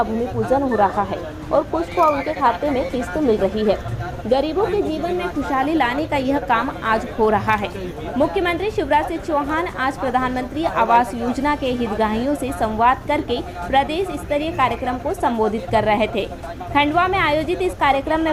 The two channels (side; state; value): both; identical; correlation 1.00